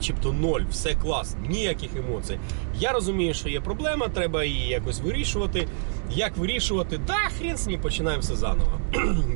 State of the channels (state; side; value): silent; left; 61 dB below the other